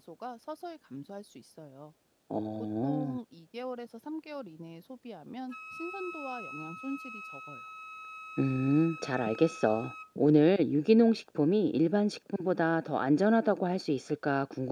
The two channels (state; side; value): identical; both; correlation 1.00